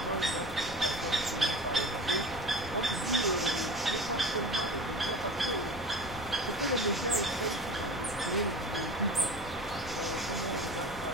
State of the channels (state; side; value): noise; left; rumble, 12 dB below the sound